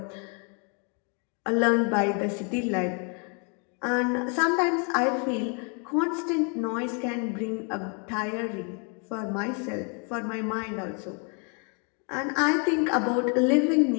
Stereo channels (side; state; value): right; quieter; 37.3 dB